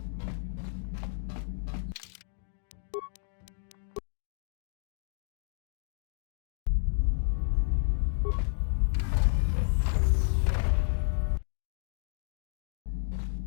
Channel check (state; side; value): silent; right; digital silence